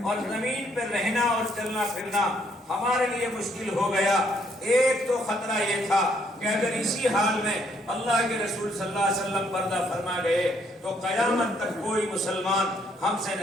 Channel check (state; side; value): normal; both; correlation 0.69